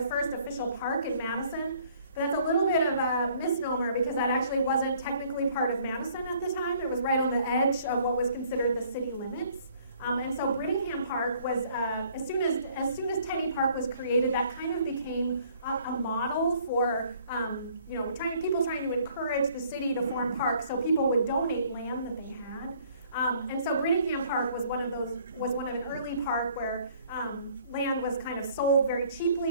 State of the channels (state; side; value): inverted; both; correlation -0.59